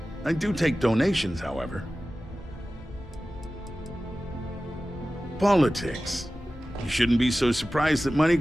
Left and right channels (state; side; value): normal; both; correlation 0.96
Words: I do take donations, however. Politics. You shouldn't be so surprised that money